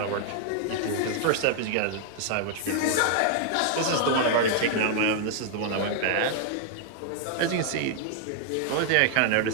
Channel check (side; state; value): both; different; correlation 0.00